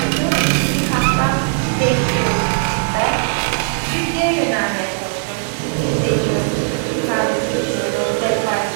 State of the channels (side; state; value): left; silent; digital silence